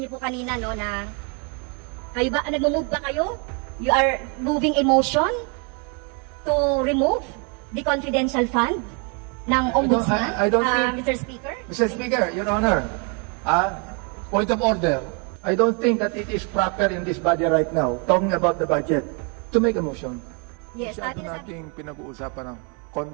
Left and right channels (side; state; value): left; quieter; 35.9 dB